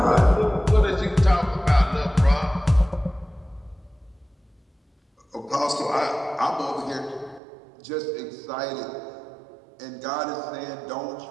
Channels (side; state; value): left; drops out; at 7.4 s